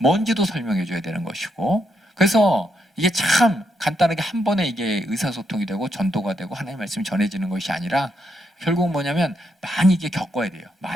설명해 줘야 되는 것이고, 그래서 이게 참 간단하게 한 번에 이게 의사소통이 되고 전도가 되고 하나님의 말씀이 전해지는 것이 아니라 결국 뭐냐면 많이 이게 겪어야 돼요.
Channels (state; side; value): normal; both; correlation 0.79